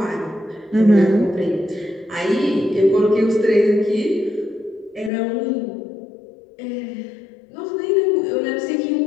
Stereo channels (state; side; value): drops out; right; at 5.1 s